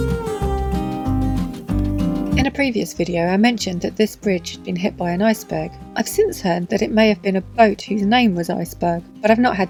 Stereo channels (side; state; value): both; identical; correlation 1.00